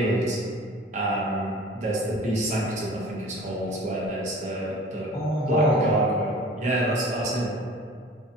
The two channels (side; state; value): both; normal; correlation 0.44